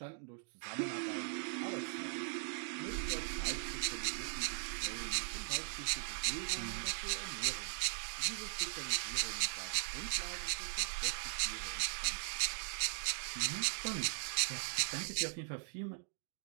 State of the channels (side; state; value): left; silent; digital silence